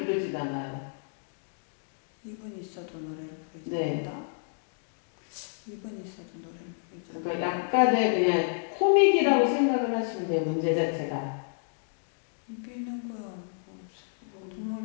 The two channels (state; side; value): silent; right; digital silence